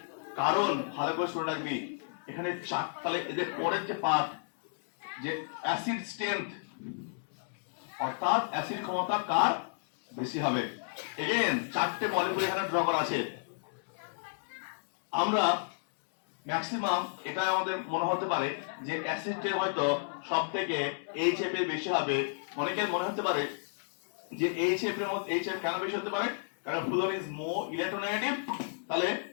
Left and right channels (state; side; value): silent; right; digital silence